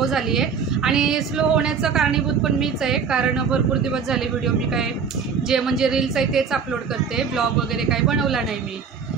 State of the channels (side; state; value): left; quieter; 6.2 dB